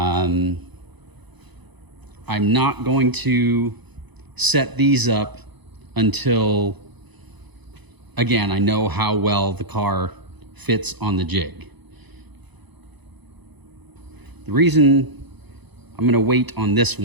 not going to set these up until, again, I know how well the car fits on the jig. The reason I'm going to wait on this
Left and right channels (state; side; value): late; left; 1.0 ms